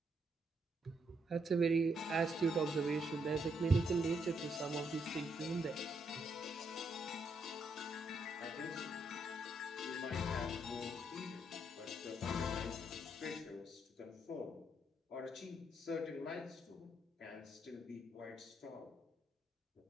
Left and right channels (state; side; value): normal; both; correlation 0.76